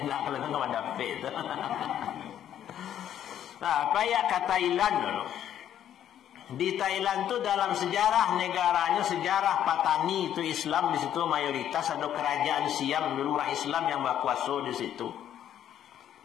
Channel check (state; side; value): quieter; right; 10.5 dB